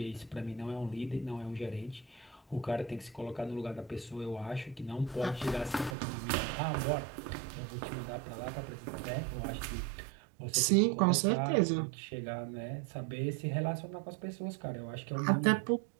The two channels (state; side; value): drops out; left; at 6.0 s